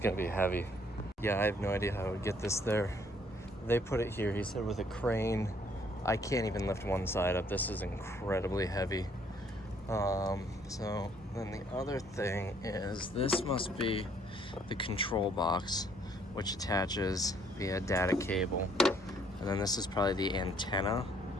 be heavy. Yeah, I have no idea how I would get this there. They put it here, he said, with a crane. I can't even lift one side up. This is incredibly heavy. So then the other thing is this must be the control box, which attaches via data cable. And then this is probably the antenna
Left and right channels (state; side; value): normal; both; correlation 0.64